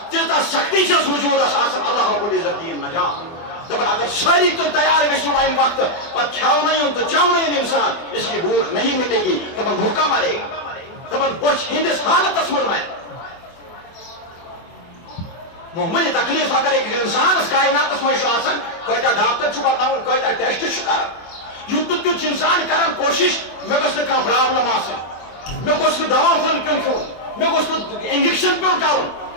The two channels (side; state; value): right; late; 24 ms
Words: تیٖژاہ سختی چھس وجوٗدس آسان اللہ رب العزت دِیِن نجات دپان اگر ساری تو تیار گژھو امہ وقت پتہ کھیونی تو چونی انسان اس کی بھوک نہیں مٹے گی دپان بھوکا مرے گا دپان بچ ہندس حالتس من مرے معمولی تکلیف اگر ایک انسانس کائناتس مجھ کتا ڈاکٹر بتاؤن کتا ٹیسٹ کر یوت تیت انسان کران کوشش مے گھس نا پرابلم آسن مے گوس نا دوا پھل پیون کھیون مے گوس نا انجیکشن پیون کرن